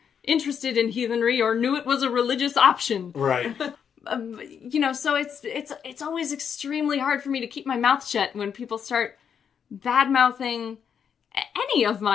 interested in heathenry or knew it was a religious option. Right. So it's always extremely hard for me to keep my mouth shut when people start bad-mouthing any of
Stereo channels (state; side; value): quieter; right; 7.6 dB